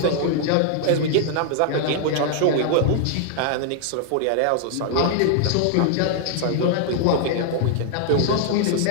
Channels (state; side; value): different; both; correlation 0.00